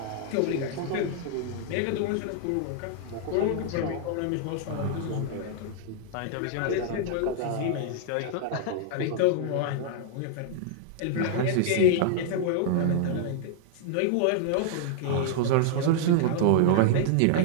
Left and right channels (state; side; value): different; both; correlation 0.00